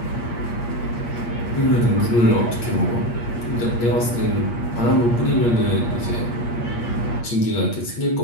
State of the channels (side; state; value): right; late; 8.5 ms